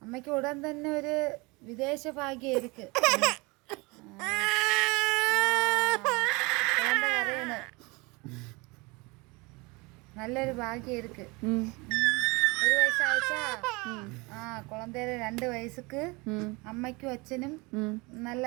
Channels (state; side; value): quieter; left; 26.2 dB